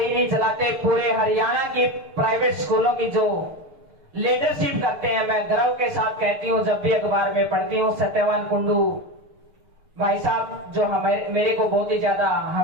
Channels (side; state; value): left; late; 6.8 ms